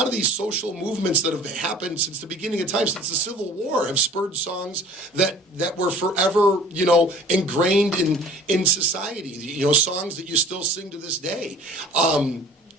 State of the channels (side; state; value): both; normal; correlation 0.48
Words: of these social movements that have happened since the beginning of time, since the Civil War, have spurred songs that were forever, ingrained in society. Songs that you still sing to this day.